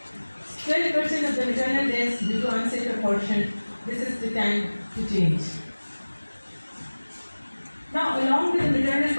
%12% of the maternal deaths due to unsafe abortion. This is the time to change. Now, along with the maternal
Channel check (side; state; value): both; inverted; correlation -1.00